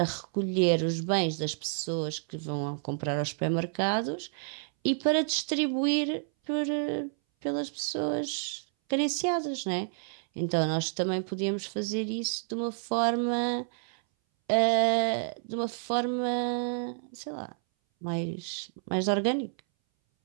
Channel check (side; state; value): left; silent; 58 dB below the other